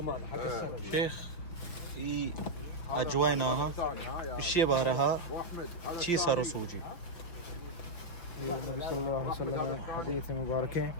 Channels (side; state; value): right; late; 5.8 ms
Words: حق السنه شيخ في أجواءنا الشيء بارها شيء صار سوجي النبي صلى الله عليه وسلم حديث مبارك